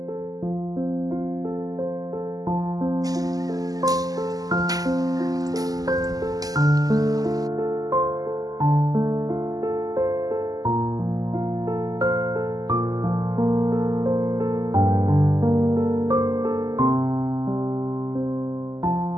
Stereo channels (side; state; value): left; late; 0.17 ms